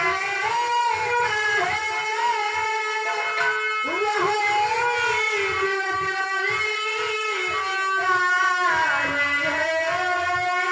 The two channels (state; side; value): identical; both; correlation 1.00